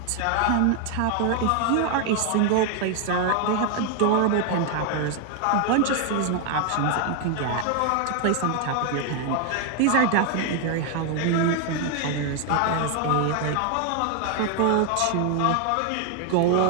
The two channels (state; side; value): different; both; correlation 0.00